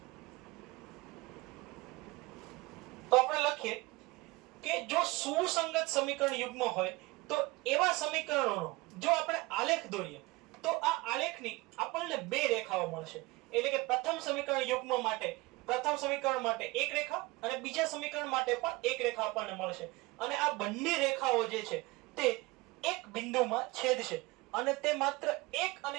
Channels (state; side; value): quieter; left; 22.8 dB